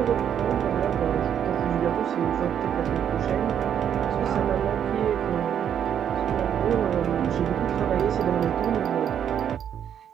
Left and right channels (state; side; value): quieter; left; 9.0 dB